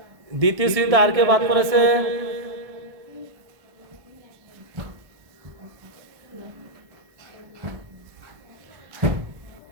দ্বিতীয় শ্রেণীতে আর কেউ বাদ পড়েছে?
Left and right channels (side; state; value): left; late; 1.5 ms